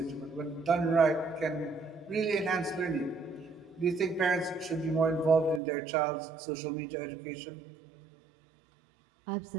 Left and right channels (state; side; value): drops out; left; at 5.6 s